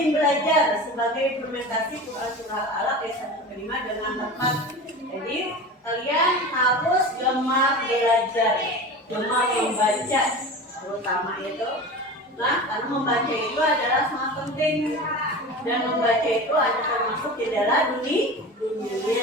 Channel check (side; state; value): both; normal; correlation 0.32